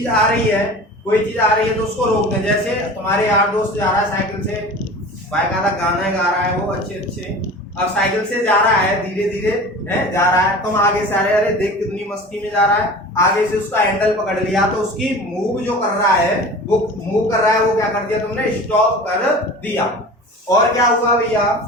आ रही है, कोई चीज आ रही है तो उसको रोक दें। जैसे तुम्हारे यार दोस्त जा रहा है साइकिल से, बाकायदा गाना गा रहा है वो अच्छे अच्छे, अब साइकिल से जा रहा है, धीरे धीरे है जा रहा है, तुम आगे से अरे अरे देख कितनी मस्ती में जा रहा है, आगे से उसका हैंडल पकड़ लिया तो उसकी मूव जो कर रहा है, वो मूव कर रहा है, वो क्या कर दिया तुमने, स्टॉप कर दिया। और क्या हुआ भैया,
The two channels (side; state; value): both; normal; correlation 0.38